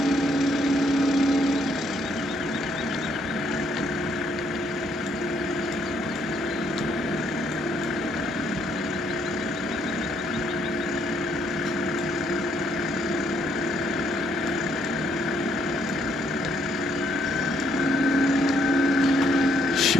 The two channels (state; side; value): normal; both; correlation 0.70